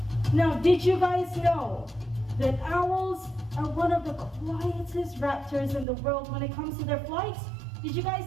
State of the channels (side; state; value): left; drops out; at 5.9 s